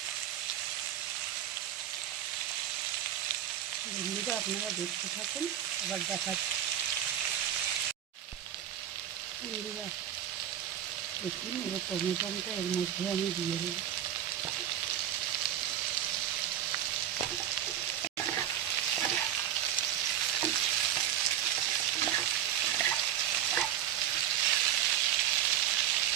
বন্ধুরা আপনারা দেখতে থাকুন, আবার দেখাচ্ছি। বন্ধুরা দেখুন, এবার টমেটোটা এর মধ্যে আমি দিয়ে দেবো।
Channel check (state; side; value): quieter; left; 10.8 dB